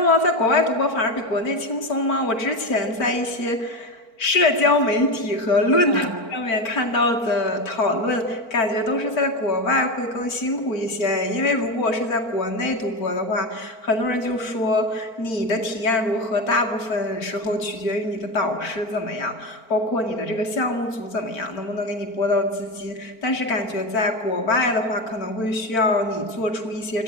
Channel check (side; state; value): right; late; 4.5 ms